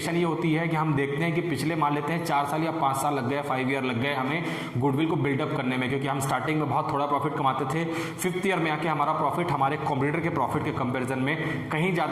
ये होती है कि हम देखते हैं कि पिछले मान लेते हैं 4 साल या 5 साल लग गए, 5 ईयर लग गए हमें गुडविल को बिल्डअप करने में, क्योंकि हम स्टार्टिंग में बहुत थोड़ा प्रॉफिट कमाते थे। 5th ईयर में आके हमारा प्रॉफिट हमारे कॉम्पिटिटर के प्रॉफिट के कंपैरिजन में कहीं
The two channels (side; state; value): both; identical; correlation 1.00